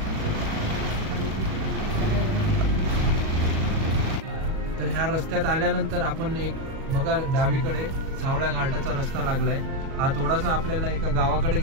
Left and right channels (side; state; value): left; late; 37 ms